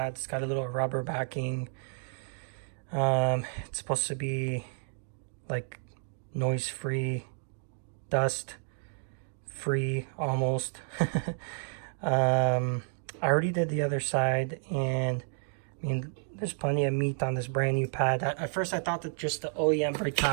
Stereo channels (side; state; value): left; silent; digital silence